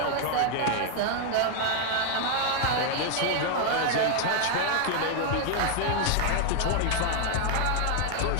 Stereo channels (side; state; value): both; different; correlation 0.00